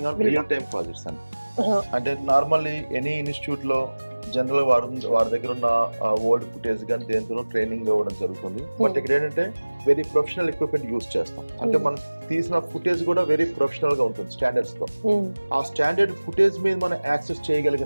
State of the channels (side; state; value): both; inverted; correlation -1.00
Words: on real time projects అని. అంటే నార్మల్లీ ఎనీ ఇన్స్టిట్యూట్ లో జనరల్ వారి దగ్గర ఉన్న ఓల్డ్ ఫుటేజ్ కానీ దేంతో ట్రైనింగ్ ఇవ్వడం జరుగుతుంది. బట్ ఇక్కడ ఏంటంటే వెరీ ప్రొఫెషనల్ ఎక్విప్మెంట్ యూజ్ చేస్తాం. అంటే మనం తీసిన ఫుటేజ్ కూడా వెరీ ప్రొఫెషనల్ గా ఉంటుంది స్టాండర్డ్స్ తో. ఆ స్టాండర్డ్ ఫుటేజ్ మీద మనం యాక్సెస్